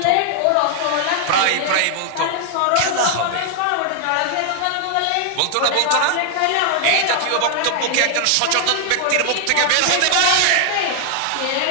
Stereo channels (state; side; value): different; both; correlation 0.00